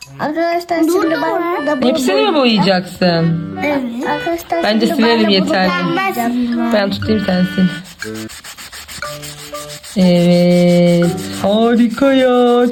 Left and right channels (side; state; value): both; identical; correlation 1.00